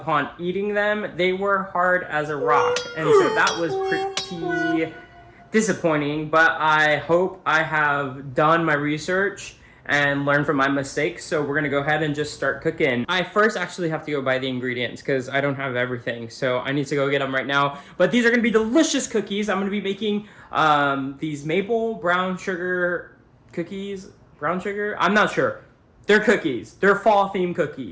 eating them, they were hard as a rock. And so that was pretty disappointing. But I hope I have done my research and learned from my mistakes. So we're going to go ahead and just start cooking. I first actually have to go buy the ingredients because I don't have everything. So I need to go get them right now. But these are going to be delicious cookies. I'm going to be making these maple brown sugar cookies. Brown sugar? I'm not sure. They're cookies. They're fall-themed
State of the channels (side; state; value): both; identical; correlation 1.00